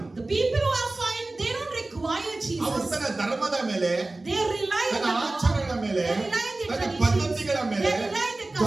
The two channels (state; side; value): quieter; left; 3.0 dB